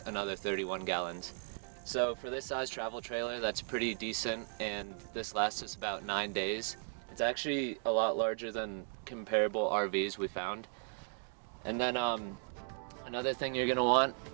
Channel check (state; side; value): silent; left; 53 dB below the other